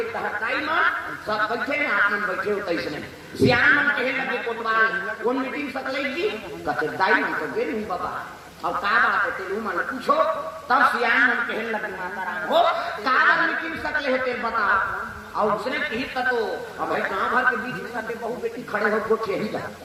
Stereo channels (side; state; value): both; identical; correlation 1.00